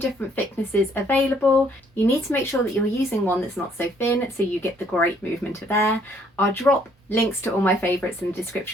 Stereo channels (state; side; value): normal; both; correlation 0.65